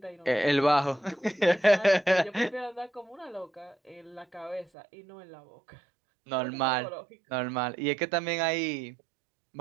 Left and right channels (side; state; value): left; drops out; at 4.7 s